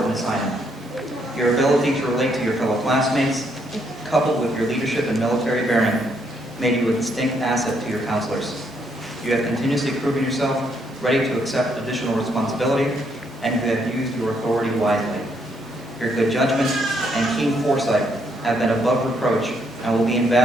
assignment. Your ability to relate to your fellow classmates, coupled with your leadership and military bearing, made you a distinct asset to your counselors. You have continuously proven yourself ready to accept additional responsibility, and you have used your authority wisely. Your good judgment and keen foresight have been above reproach and will be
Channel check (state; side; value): normal; both; correlation 0.73